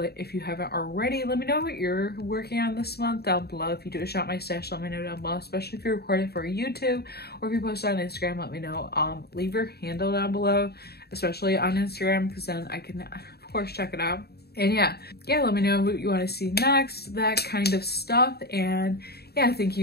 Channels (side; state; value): right; late; 0.47 ms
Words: if you haven't already. Let me know what you're working on this month down below. If you do a Shop My Stash, let me know down below, especially if you record it for YouTube or if you post it on Instagram, let me know. Leave your handle down below, especially on Instagram, because then I can of course check it out. And yeah, let me know what you want to see next, that kind of stuff. And yeah, thank